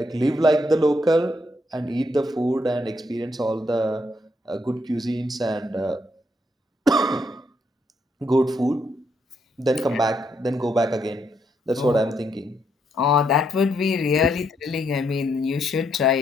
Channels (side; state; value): both; normal; correlation 0.76